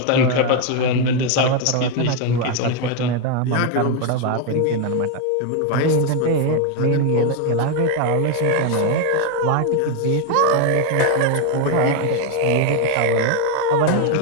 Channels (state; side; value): different; both; correlation 0.01